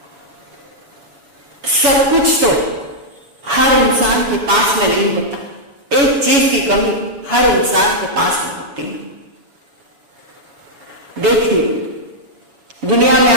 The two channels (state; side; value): late; left; 7.1 ms